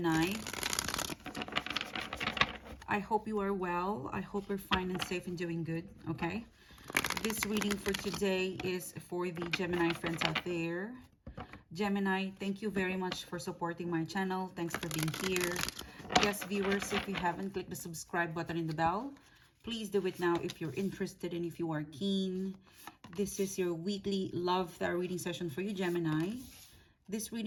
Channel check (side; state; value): both; identical; correlation 1.00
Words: I hope you are well. I hope you're fine and safe and doing good, okay? This reading for today is for the Gemini friends out there. Gemini, thank you very much for supporting my channel. Thanks for being here. Yes, viewers, if you haven't clicked the subscribe button and the bell, please do it now if you're interested and if you are keen. This is your weekly love tarot reading session for you, Gemini. This